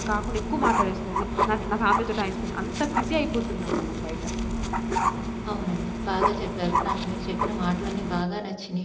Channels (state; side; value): identical; both; correlation 1.00